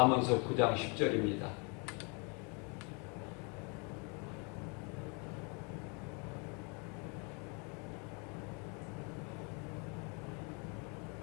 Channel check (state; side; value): quieter; right; 33.7 dB